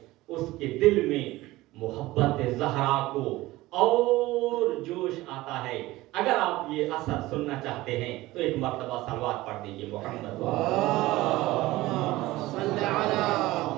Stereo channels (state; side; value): quieter; left; 18.3 dB